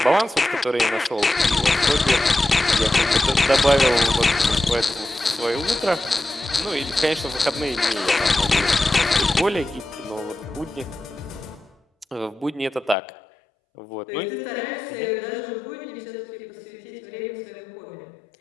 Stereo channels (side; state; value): right; drops out; at 13.0 s